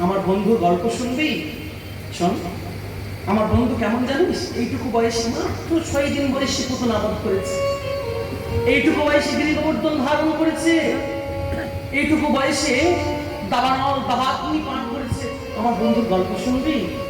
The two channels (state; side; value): identical; both; correlation 1.00